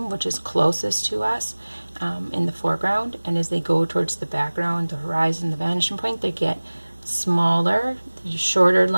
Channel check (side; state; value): both; inverted; correlation -1.00